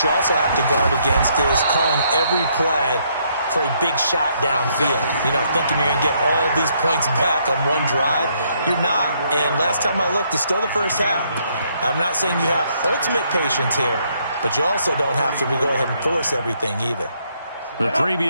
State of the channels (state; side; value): inverted; both; correlation -0.71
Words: you also have to guard against is calling every play for a big shot downfield. You know, thinking you're going to get all these points back on one drive. You're not. And last time I looked, it's still the first half. I'm not saying you have ultimate patience here, but you also don't have to go ahead and force everything either. The